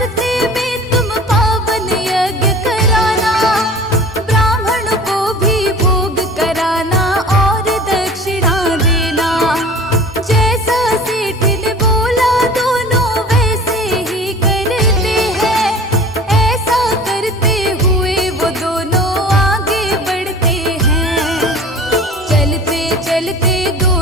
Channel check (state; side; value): normal; both; correlation 0.42